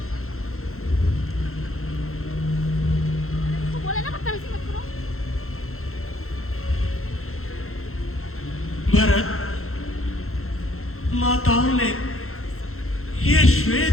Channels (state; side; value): late; right; 0.62 ms